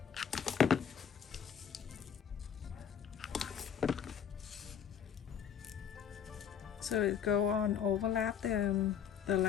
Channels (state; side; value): quieter; right; 8.0 dB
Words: So it go on overlap the